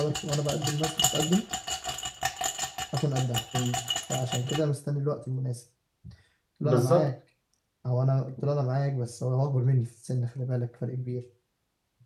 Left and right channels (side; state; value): both; identical; correlation 1.00